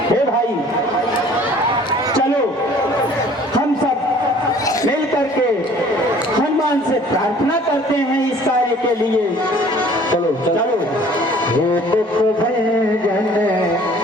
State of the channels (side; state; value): both; normal; correlation 0.52